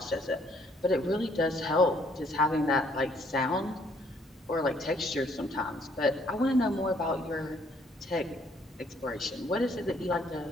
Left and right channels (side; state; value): both; normal; correlation 0.65